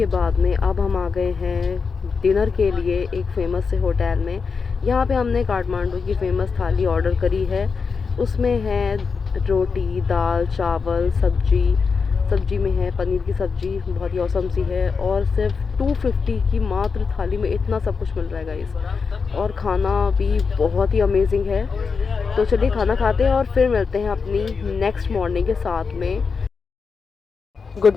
बाद में अब हम आ गए हैं डिनर के लिए एक फ़ेमस से होटल में। यहाँ पे हमने काठमांडू की फ़ेमस थाली ऑर्डर करी है। उसमें है रोटी, दाल, चावल, सब्जी में है पनीर की सब्ज़ी, बहुत ही औसम सी है। और सिर्फ 250 की मात्र थाली में इतना सब कुछ मिल रहा है गाइस, और खाना भी बहुत ही अमेजिंग है। तो चलिए खाना खाते हैं और फिर मिलते हैं अपनी नेक्स्ट मॉर्निंग के साथ में। गुड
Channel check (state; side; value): quieter; right; 5.2 dB